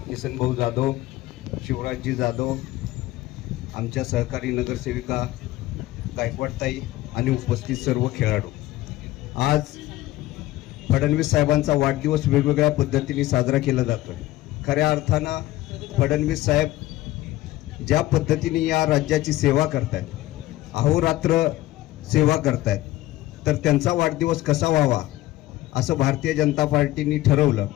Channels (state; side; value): quieter; right; 16.3 dB